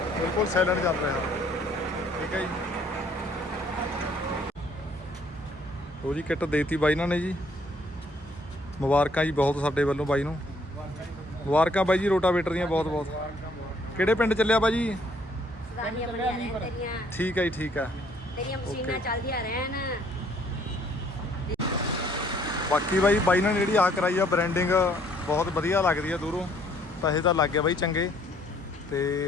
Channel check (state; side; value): normal; both; correlation 0.63